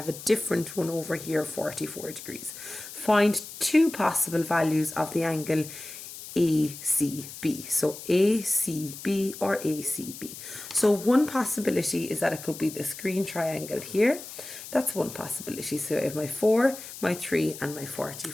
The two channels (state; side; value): noise; left; hiss, 13 dB below the sound